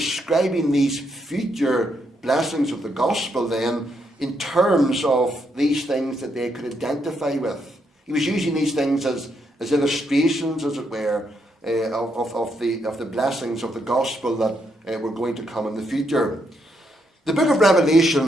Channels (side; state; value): both; normal; correlation 0.77